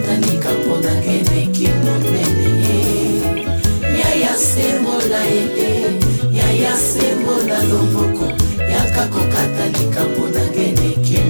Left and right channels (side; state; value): both; inverted; correlation -1.00